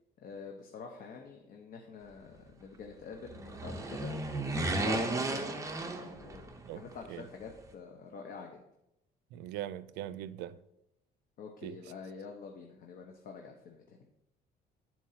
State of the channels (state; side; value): normal; both; correlation 0.45